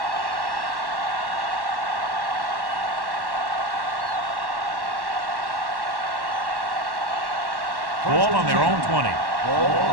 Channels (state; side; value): late; left; 1.1 ms